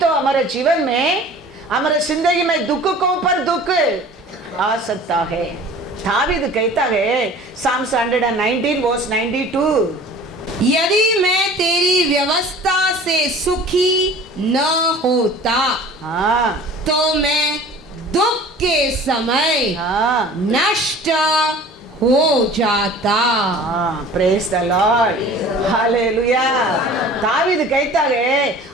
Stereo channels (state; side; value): normal; both; correlation 0.44